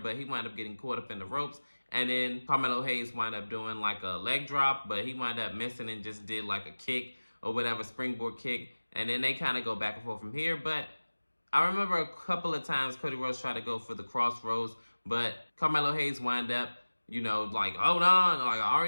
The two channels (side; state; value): both; inverted; correlation -1.00